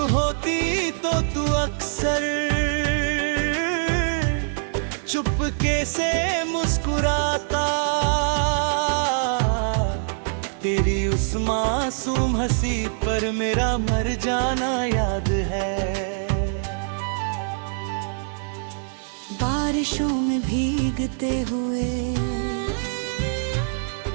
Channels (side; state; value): left; silent; digital silence